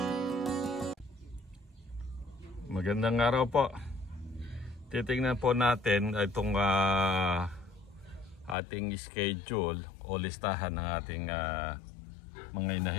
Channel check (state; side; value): drops out; right; at 8.6 s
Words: araw po. Titingnan po natin itong ating schedule o listahan ng ating mga